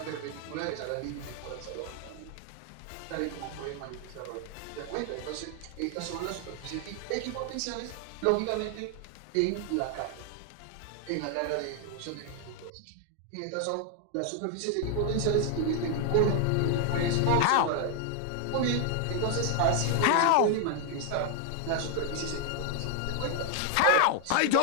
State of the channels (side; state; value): both; different; correlation 0.00